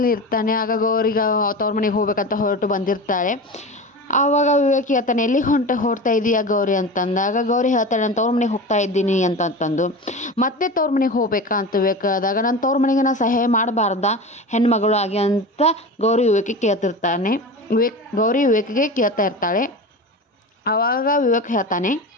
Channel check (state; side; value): normal; both; correlation 0.29